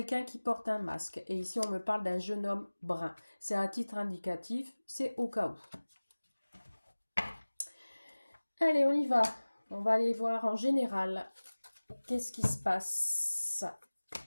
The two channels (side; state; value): both; inverted; correlation -1.00